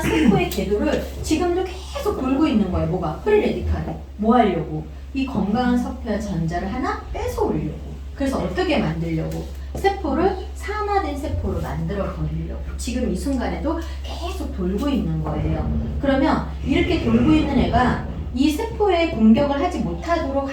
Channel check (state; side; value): identical; both; correlation 1.00